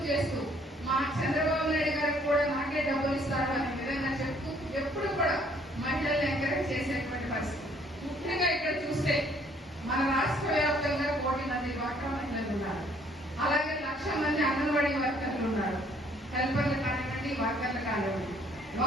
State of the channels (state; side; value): normal; both; correlation 0.62